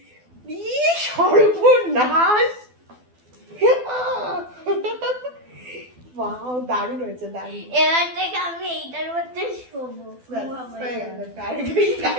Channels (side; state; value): left; late; 12 ms